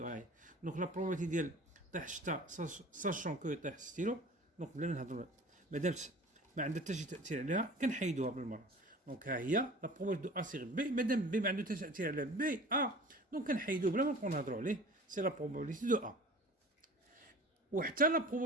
هاي. دونك لا بروبابيليتي ديال طيح الشتا ساشون كو يطيح ستيلو، دونك بلا ما نهضروا مادام ما عندها حتى شي تاثير عليها كنحيدوها بالمره. دونك ها هي لا بروبابيليتي دو ا سيغ بي، مادام بي ما عنده حتى تاثير على بي ا دونك كنحيدوه بلا ما نبقاو نهضروا عليه، سي لا بروبابيليتي دو ا. وحتى لا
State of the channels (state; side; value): normal; both; correlation 0.42